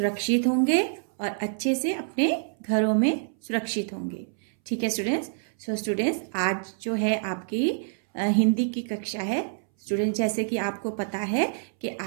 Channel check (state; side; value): silent; left; 60 dB below the other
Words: होंगे और अच्छे से अपने घरों में सुरक्षित होंगे। ठीक है स्टूडेंट्स। स्टूडेंट्स, आज जो है आपकी हिंदी की कक्षा है। स्टूडेंट्स, जैसे कि आपको पता है कि